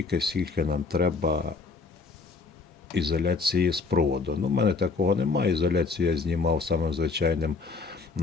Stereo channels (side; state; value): right; quieter; 4.3 dB